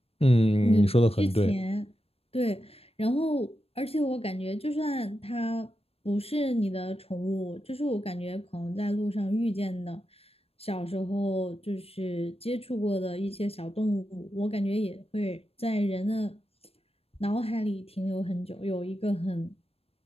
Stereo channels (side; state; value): right; late; 0.28 ms